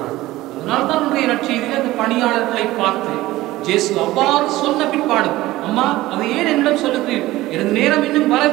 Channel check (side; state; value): left; quieter; 17.3 dB